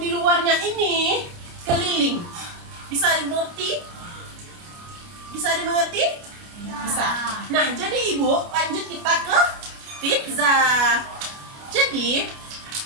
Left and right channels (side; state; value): left; late; 29 ms